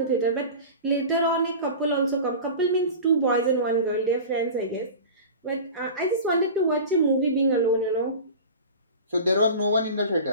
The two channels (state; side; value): inverted; both; correlation -0.34